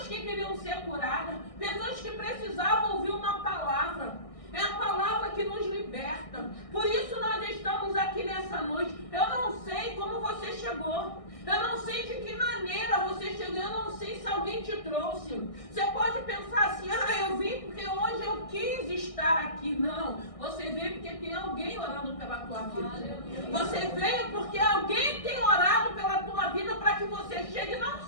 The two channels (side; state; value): right; late; 1.6 ms